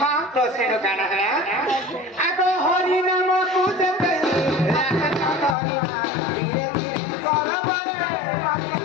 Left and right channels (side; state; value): right; drops out; at 5.6 s